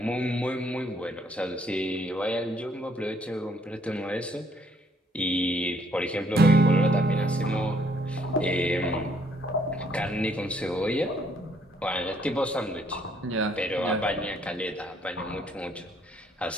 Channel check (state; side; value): normal; both; correlation 0.66